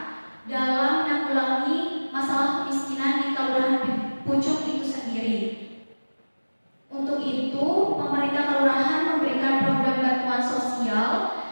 dalam menanggulangi masalah kemiskinan di Kelurahan Pucung itu sendiri. Untuk itu, pemerintah kelurahan memberikan program bantuan sosial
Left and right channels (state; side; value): inverted; both; correlation -1.00